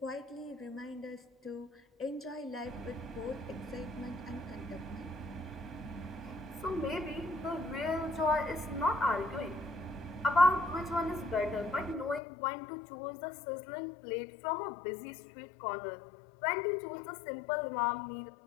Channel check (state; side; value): drops out; right; at 12.2 s